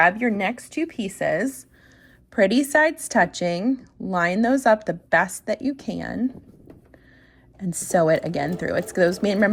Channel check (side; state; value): both; identical; correlation 1.00